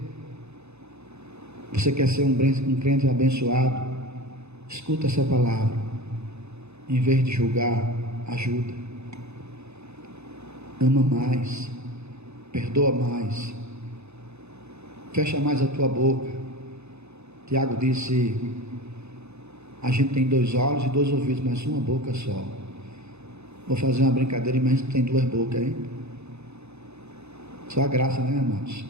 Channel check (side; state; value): left; late; 0.81 ms